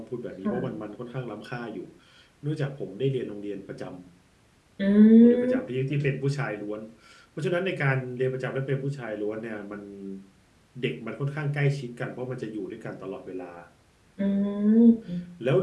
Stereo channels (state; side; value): identical; both; correlation 1.00